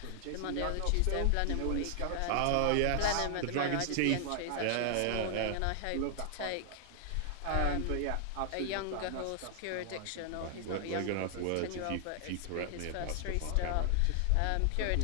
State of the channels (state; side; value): different; both; correlation 0.00